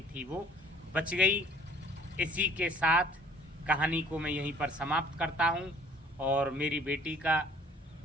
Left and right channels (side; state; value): both; normal; correlation 0.54